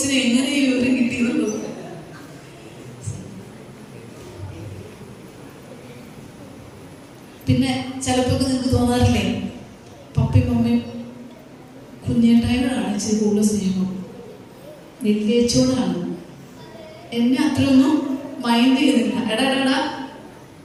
എങ്ങനെ ഈ വിവരം കിട്ടിയെന്നുള്ളത്. പിന്നെ ചിലപ്പോ നിങ്ങൾക്ക് തോന്നാറില്ലേ, പപ്പയും മമ്മിയും കുഞ്ഞേട്ടായോടാണ് ഇച്ചിരി കൂടുതൽ സ്നേഹം, വലിയേച്ചോടാണ്. എന്നെ അത്രയൊന്നും മൈൻഡ് ചെയ്യുന്നില്ല. എടാ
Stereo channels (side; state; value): both; identical; correlation 1.00